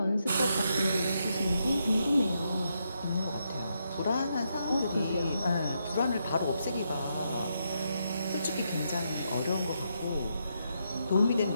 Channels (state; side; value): inverted; both; correlation -0.81